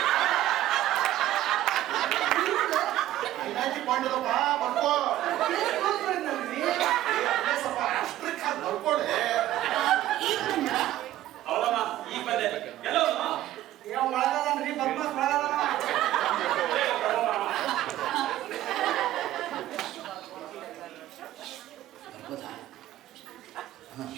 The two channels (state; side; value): quieter; left; 14.0 dB